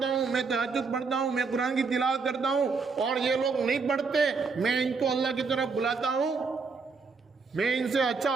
ہوں، میں تہجد پڑھتا ہوں، میں قرآن کی تلاوت کرتا ہوں اور یہ لوگ نہیں پڑھتے، میں ان کو اللہ کی طرف بلاتا ہوں، میں ان سے اچھا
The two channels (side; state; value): left; quieter; 4.8 dB